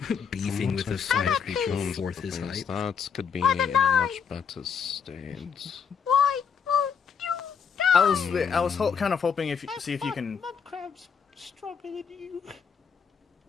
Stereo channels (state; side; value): quieter; right; 6.7 dB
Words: beefing with a fire creature a fourth his height. That could be in a much better state. Why won't you die? I was kind of hoping see if you can. Mudcrab's stronger than you.